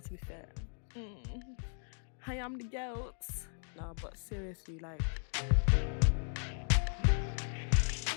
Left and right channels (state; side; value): silent; right; digital silence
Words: to be fair. I am the goat. No, but seriously, like.